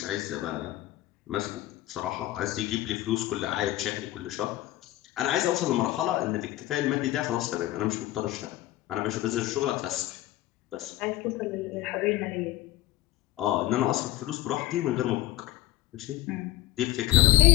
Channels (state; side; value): quieter; right; 15.8 dB